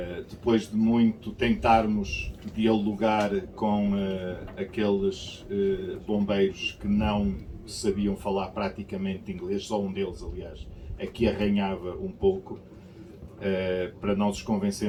Depois de muito tentarmos dialogar com aqueles bombeiros que não sabiam falar praticamente inglês, só um deles, aliás, aqui arranhava um pouco, para nós os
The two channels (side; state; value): both; identical; correlation 1.00